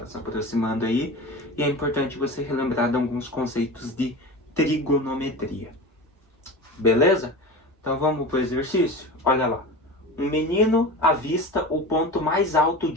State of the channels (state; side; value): normal; both; correlation 0.30